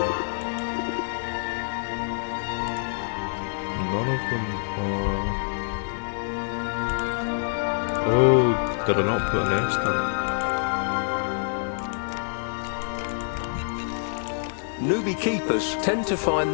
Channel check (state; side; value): silent; right; 61 dB below the other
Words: None of them are... Oh, did I not put a nest up? Newbie keepers tend to find